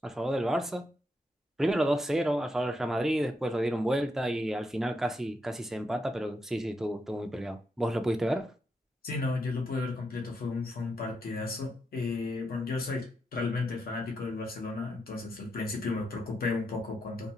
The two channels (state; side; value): normal; both; correlation 0.82